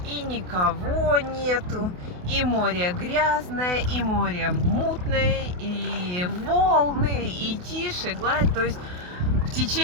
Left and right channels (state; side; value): late; left; 28 ms